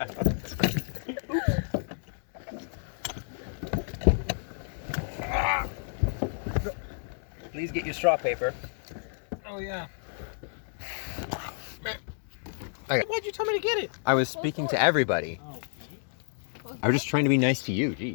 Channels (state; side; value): silent; right; 58 dB below the other